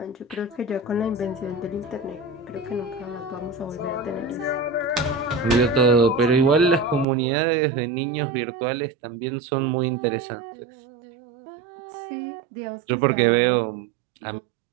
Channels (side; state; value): left; drops out; at 7.1 s